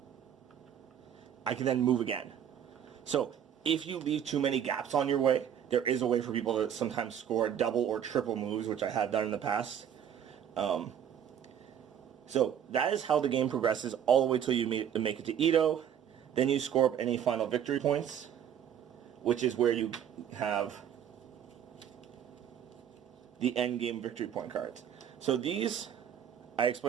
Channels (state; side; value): quieter; left; 9.1 dB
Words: I can then move again. So if you leave too many gaps on your way, there is a way for people to sometimes score double or triple moves, which I have done in the past. So that is how the game progresses all the way till you make it to Edo. Then you score up any final victory points, which is where you have the end game victory point cards. So these, I